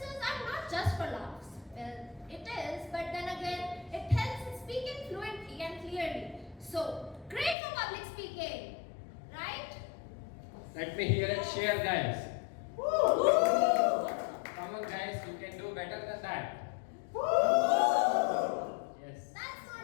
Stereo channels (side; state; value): right; drops out; at 7.6 s